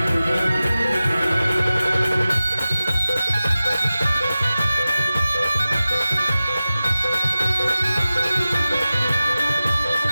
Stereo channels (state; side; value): inverted; both; correlation -0.95